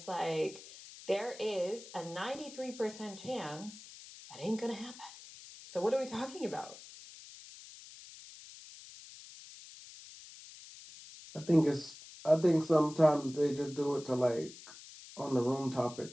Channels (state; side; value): noise; left; hiss, 17 dB below the sound